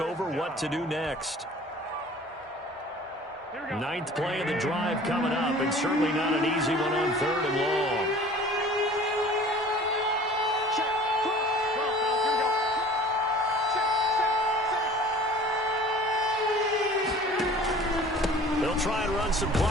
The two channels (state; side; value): normal; both; correlation 0.46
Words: what to do next. 9th play of the drive coming up, and certainly not an easy one on 3rd and long. Try and run some